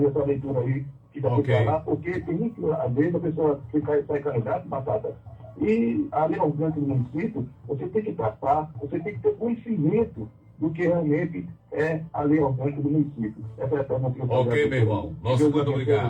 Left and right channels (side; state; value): both; identical; correlation 1.00